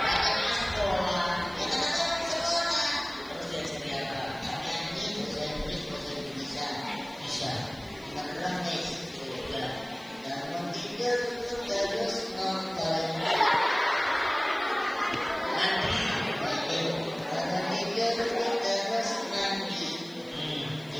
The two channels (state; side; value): noise; left; hiss, 28 dB below the sound